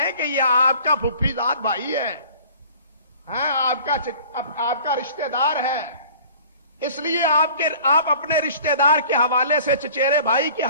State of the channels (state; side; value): inverted; both; correlation -0.48